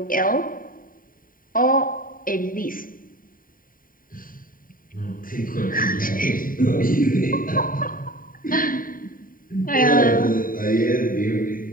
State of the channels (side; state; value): right; late; 0.41 ms